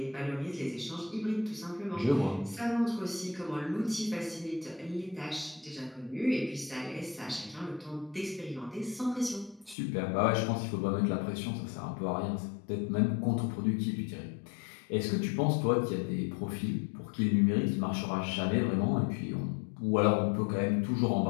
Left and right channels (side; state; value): right; drops out; at 9.8 s